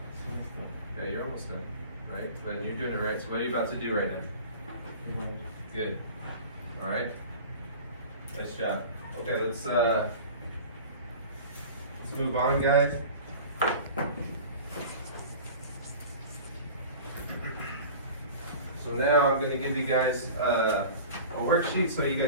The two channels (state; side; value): inverted; both; correlation -0.38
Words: Okay, you're almost done, right? Then you're doing it right. So what are you about to do right now? Good. All right. Nice job. Okay, let's move on, guys. So now I'm going to give you guys a worksheet so you